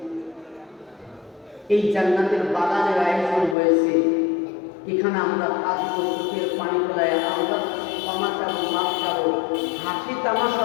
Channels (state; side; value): drops out; right; at 3.6 s